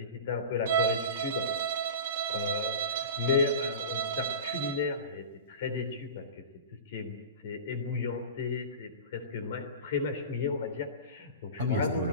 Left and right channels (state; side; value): inverted; both; correlation -0.32